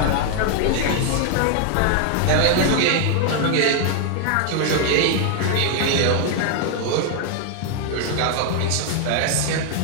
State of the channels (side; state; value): both; different; correlation 0.00